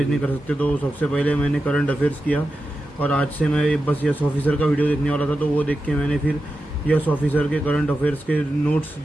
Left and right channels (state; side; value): normal; both; correlation 0.90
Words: नहीं दिन। कर सकते। तो सबसे पहले मैंने करंट अफेयर्स किया और आज से मैं बस यस ऑफिसर का वीडियो देखने वाला था, तो वो देख के मैंने फिर यस ऑफिसर के करंट अफेयर्स के नोट्स